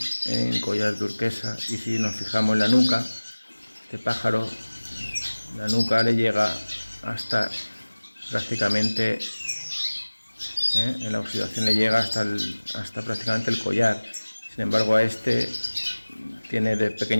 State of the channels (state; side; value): inverted; both; correlation -1.00